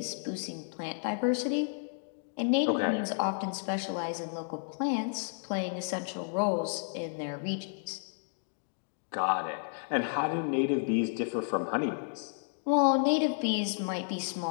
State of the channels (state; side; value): silent; right; digital silence